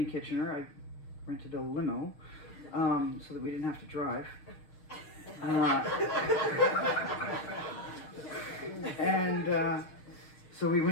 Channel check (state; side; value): late; right; 6.6 ms